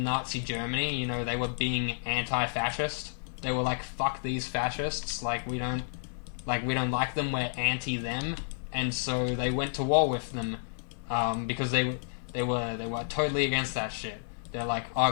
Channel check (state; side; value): silent; right; 57 dB below the other